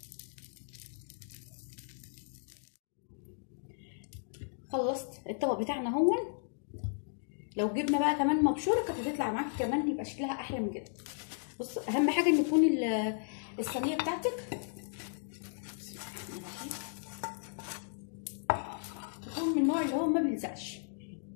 خلصت الطبق بتاعنا هون. لو جبنا بقى كمان مبشوره كانت هتطلع معاكي كمان يبقى شكلها احلى من كده. بص اهم حاجه ان يكون الصينيه بتاعتك تكون من النوع اللي هو ما بيلزقش.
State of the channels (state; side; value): silent; right; digital silence